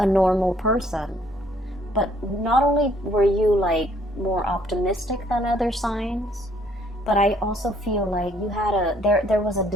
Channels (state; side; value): normal; both; correlation 0.64